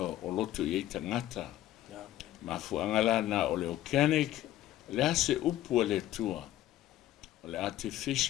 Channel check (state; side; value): quieter; right; 13.8 dB